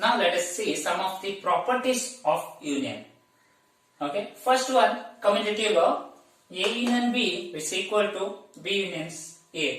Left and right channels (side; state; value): both; identical; correlation 1.00